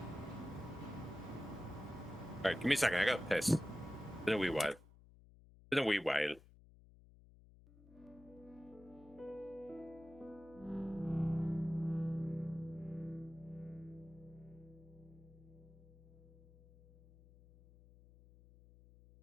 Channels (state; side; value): noise; left; hum, 22 dB below the sound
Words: Alright, give me a second. I got piss. Been a wee while. Been a wee while.